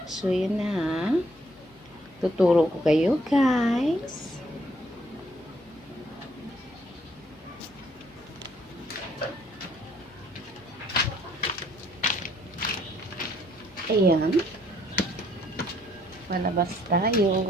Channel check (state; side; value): noise; left; hum, 29 dB below the sound